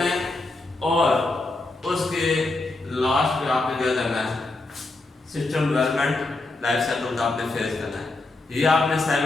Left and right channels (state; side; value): quieter; right; 3.1 dB